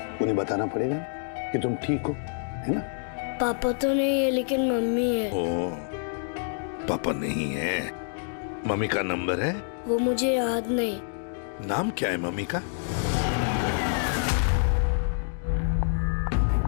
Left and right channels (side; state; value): right; silent; digital silence